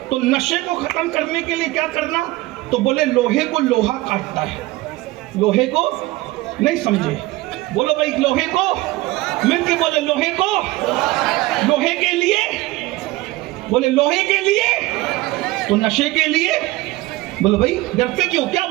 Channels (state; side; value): quieter; left; 19.1 dB